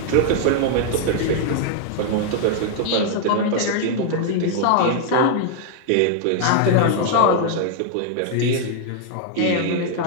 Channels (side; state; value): both; different; correlation 0.00